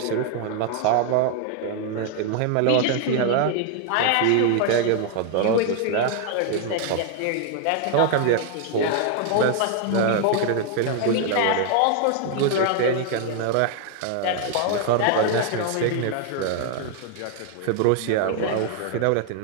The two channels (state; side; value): different; both; correlation 0.00